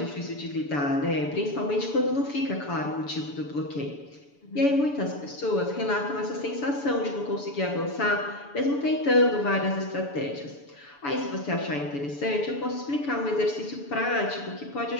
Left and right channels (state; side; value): late; right; 7.0 ms